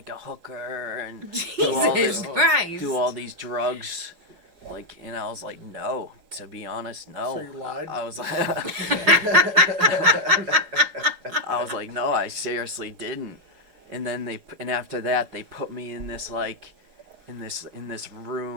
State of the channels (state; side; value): late; left; 5.6 ms